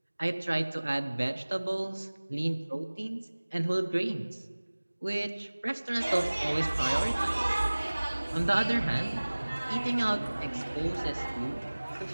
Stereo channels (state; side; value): inverted; both; correlation -1.00